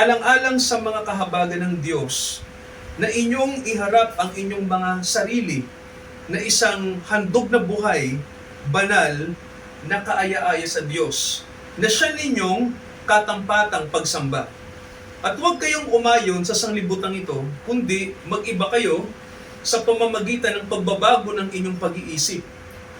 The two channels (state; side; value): identical; both; correlation 1.00